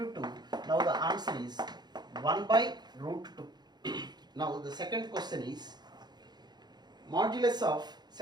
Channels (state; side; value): late; left; 0.20 ms